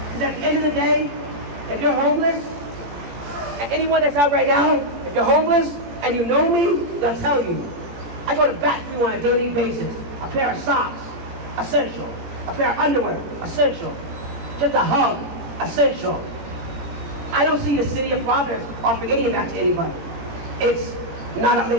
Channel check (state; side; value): late; left; 17 ms